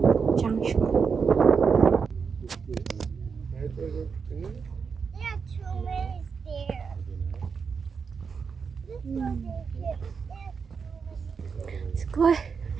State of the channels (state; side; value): quieter; left; 5.8 dB